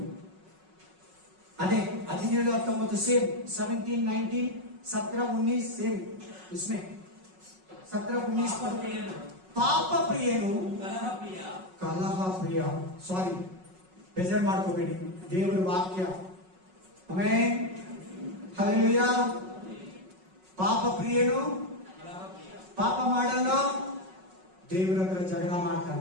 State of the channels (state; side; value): late; left; 5.4 ms